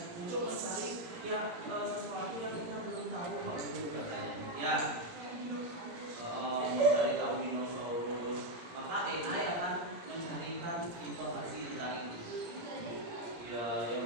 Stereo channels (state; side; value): late; left; 17 ms